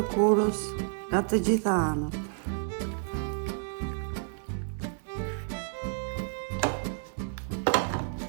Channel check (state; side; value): silent; left; 58 dB below the other